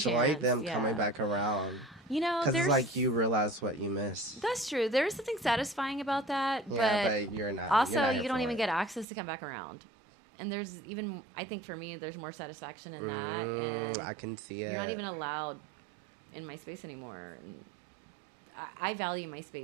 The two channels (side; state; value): left; drops out; at 9.1 s